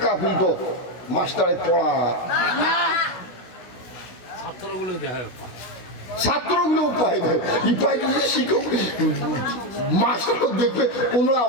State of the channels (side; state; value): right; late; 16 ms